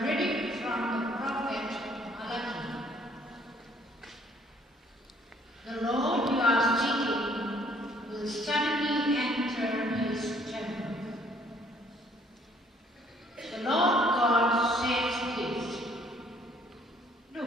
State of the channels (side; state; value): both; normal; correlation 0.62